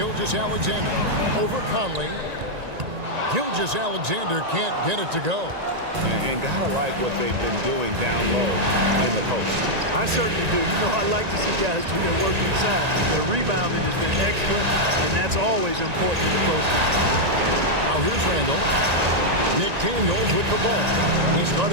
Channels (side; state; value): left; late; 1.9 ms